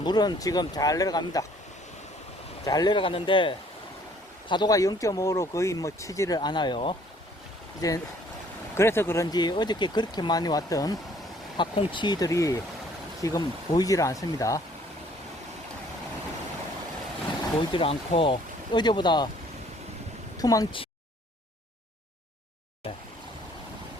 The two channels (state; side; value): normal; both; correlation 0.59